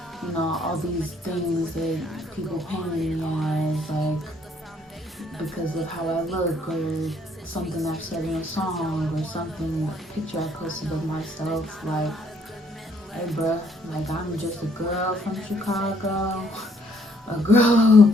all these things that people paint me as, like, because of how I look or something I've said in a song or something, a picture I posted of myself, like, hey bruh, like I'm just a girl from Chicago, a girl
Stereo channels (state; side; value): normal; both; correlation 0.66